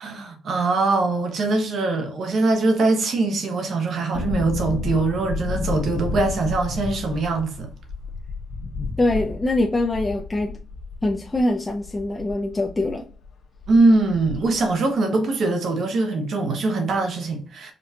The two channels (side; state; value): both; normal; correlation 0.80